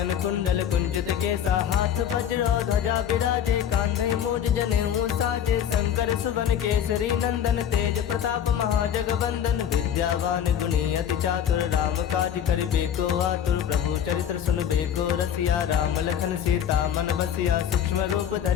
कुंडल कुंचित केसा हाथ वज्र ध्वजा विराजे कांधे मूज जनेऊ साजे शंकर सुवन केसरी नंदन तेज प्रताप महाजगवंदन विद्यावान गुणी अति चातुर राम काज करिबे को आतुर प्रभु चरित्र सुनबे को रसिया राम लखन सीता मन बसिया सूक्ष्म रूप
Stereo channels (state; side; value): quieter; right; 9.2 dB